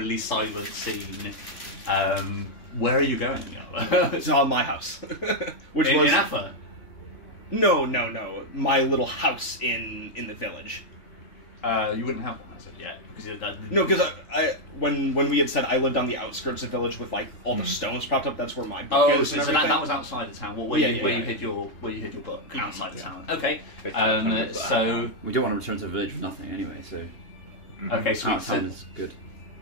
silent scene. Where are you going? It's on my house, which in was Affa. No, my little house in the village. You wouldn't have one as of yet because No, because when we had said I lived on the outskirts of the village with like all the stones propped up, that's where my book is. So that was outside the town. Where you hid your book outside the town. Okay. So we don't want to return to the village with nothing anyway. So okay, sweet. Sounds good.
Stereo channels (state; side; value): late; right; 3.2 ms